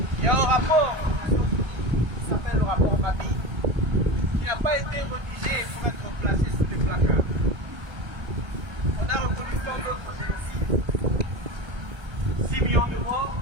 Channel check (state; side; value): late; left; 1.3 ms